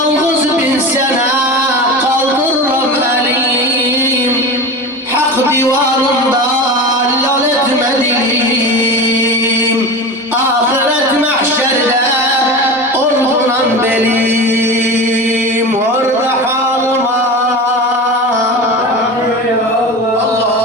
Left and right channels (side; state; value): both; normal; correlation 0.28